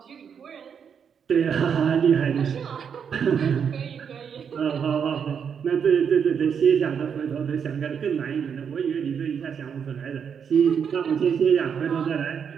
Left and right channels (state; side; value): quieter; left; 7.2 dB